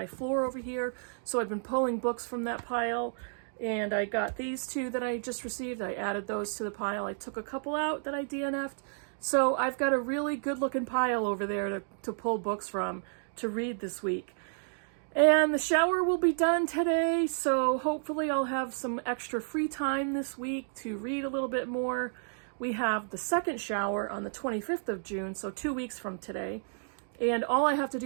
floor over here, so I've been pulling books from that pile, and I got these two that I just received. I added those to the pile. I took a couple out that I DNF'd, so I've got a really good looking pile over there to pull books from to read this week. And the shower will be done today, so hopefully I'll have some extra free time this week to read a little bit more. We have the second shower on the 25th of June, so 2 weeks from today. And all I have to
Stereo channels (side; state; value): left; silent; digital silence